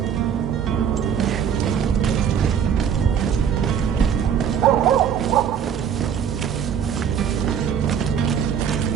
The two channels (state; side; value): quieter; left; 8.1 dB